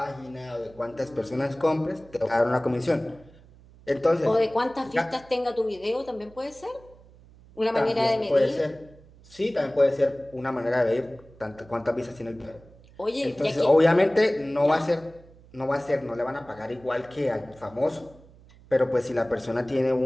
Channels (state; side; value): noise; right; hum, 24 dB below the sound